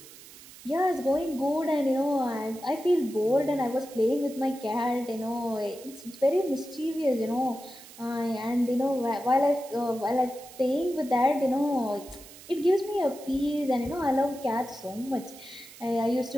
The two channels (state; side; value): noise; right; hiss, 19 dB below the sound